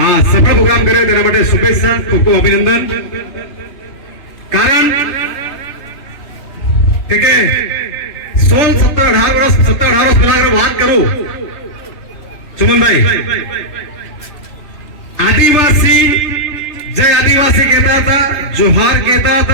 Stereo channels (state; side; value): late; right; 2.9 ms